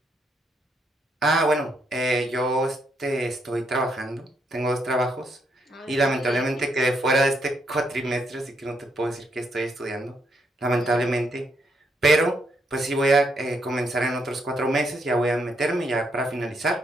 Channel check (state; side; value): normal; both; correlation 0.76